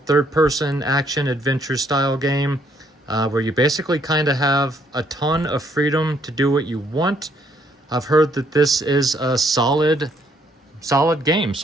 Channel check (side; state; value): both; normal; correlation 0.69